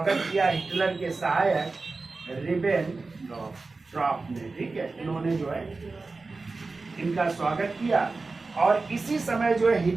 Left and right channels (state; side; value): quieter; left; 3.8 dB